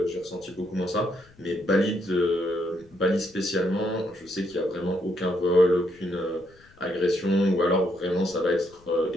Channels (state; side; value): noise; left; rumble, 28 dB below the sound